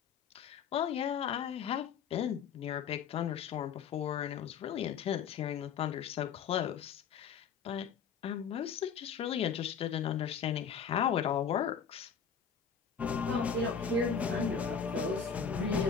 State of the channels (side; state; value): right; quieter; 6.8 dB